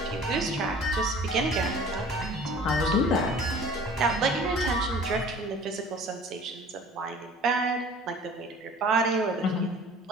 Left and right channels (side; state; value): both; normal; correlation 0.46